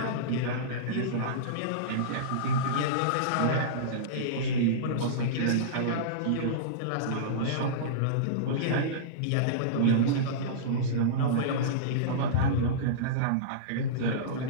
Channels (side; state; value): both; different; correlation -0.04